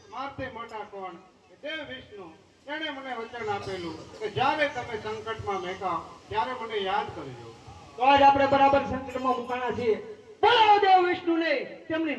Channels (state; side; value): identical; both; correlation 1.00